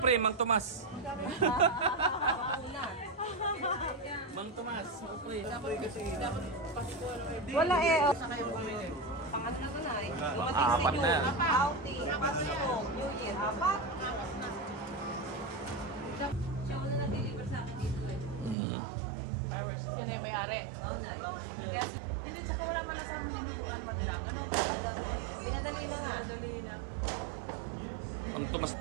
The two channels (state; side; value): drops out; left; at 18.6 s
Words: pre, Mang Tomas. Mang Tomas, pre. Wala eh. Pangat na na eh. Apat na yan. Outing. Pasko. New Year. Apat. Siya wala na-deliver sa akin dito eh. Fireworks. Sino yung may-ari? Oo na eh. Hindi, tsaka wala man sa mga nilubuan pa nila. Ganun. Pinadali mo na. Dali na. Mang Tomas.